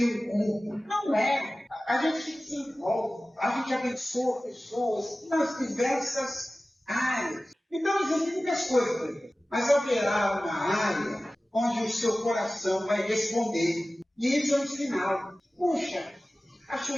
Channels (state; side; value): normal; both; correlation 0.97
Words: um culto. Não é. A gente se desenvolve, a gente abençoa pessoas nas diversas áreas. Então existem muitas coisas. mas haverá uma área onde o seu coração vai responder. E isso é um sinal. Puxa, acho